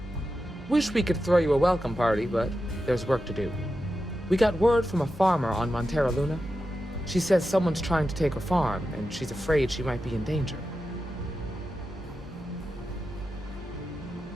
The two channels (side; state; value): both; normal; correlation 0.90